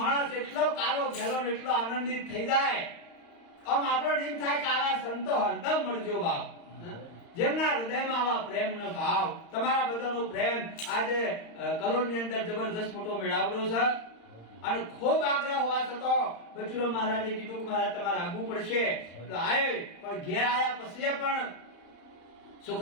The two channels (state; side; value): late; right; 35 ms